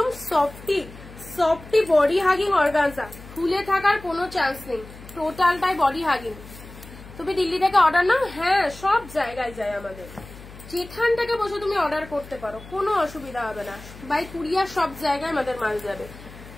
সফটি বডি হাগিং অর্গানজা, ফুলে থাকার কোনো চান্স নেই, টোটালটাই বডি হাগিং। তুমি দিল্লি থেকে অর্ডার নাও, হ্যাঁ সব জায়গায় যায় আমাদের, যেখান থেকে বসে তুমি অর্ডার করতে পারো, কোনো অসুবিধা হবে না। বাই কুরিয়ার সব জায়গায় আমাদের মাল যাবে,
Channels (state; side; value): noise; left; hum, 17 dB below the sound